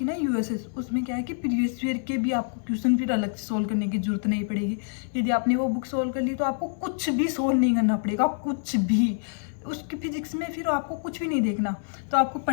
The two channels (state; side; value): silent; right; 60 dB below the other